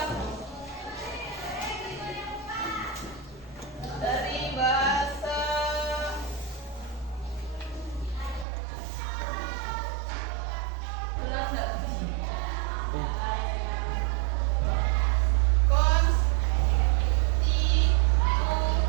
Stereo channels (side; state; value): left; drops out; at 8.5 s